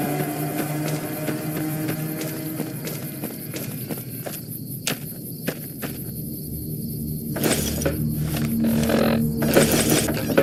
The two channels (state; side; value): identical; both; correlation 1.00